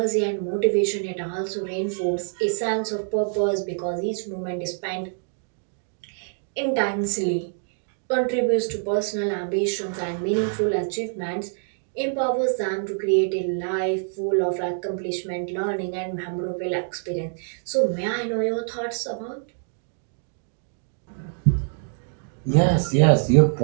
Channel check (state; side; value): silent; left; digital silence